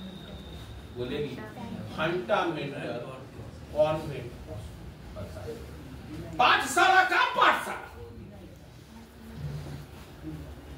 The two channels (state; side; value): identical; both; correlation 1.00